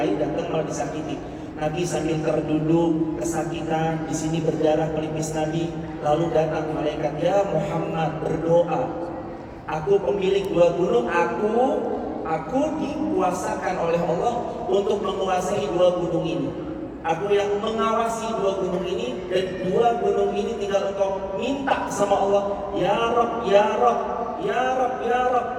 datang malah disakiti. Nabi sambil terduduk kesakitan, di sini berdarah pelipis Nabi, lalu datang malaikat, ya Muhammad berdoa, aku pemilik dua gunung, aku dikuasakan oleh Allah untuk menguasai dua gunung ini. Aku yang mengawasi dua gunung ini, dan dua gunung ini tinggal engkau minta sama Allah, ya Rabb, ya Rabb, ya Rabb, ya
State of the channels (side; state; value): both; identical; correlation 1.00